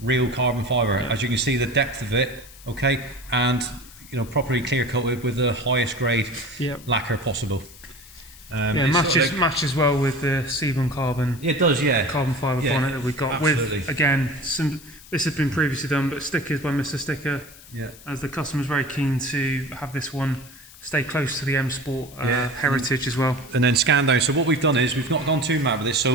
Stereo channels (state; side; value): noise; left; hiss, 20 dB below the sound